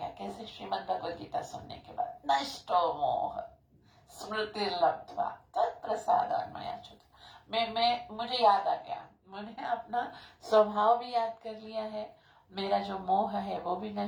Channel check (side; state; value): both; identical; correlation 1.00